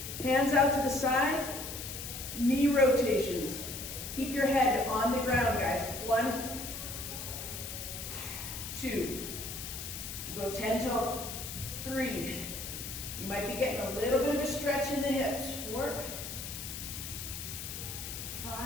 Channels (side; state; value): left; noise; hiss, 7 dB below the sound